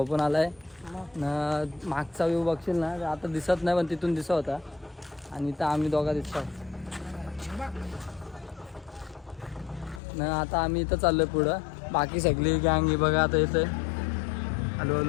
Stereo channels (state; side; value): drops out; right; at 10.0 s